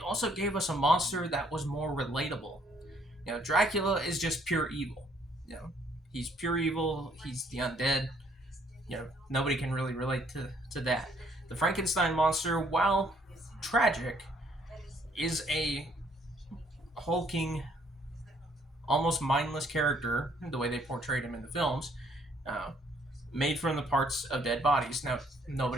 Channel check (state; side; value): normal; both; correlation 0.65